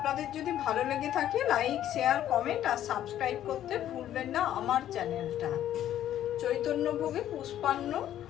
যদি ভালো লেগে থাকে, লাইক, শেয়ার, কমেন্ট আর সাবস্ক্রাইব করতে ভুলবেন না আমার চ্যানেলটা। চৈতন্যভোগে পুষ্পান্ন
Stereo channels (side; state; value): right; quieter; 11.7 dB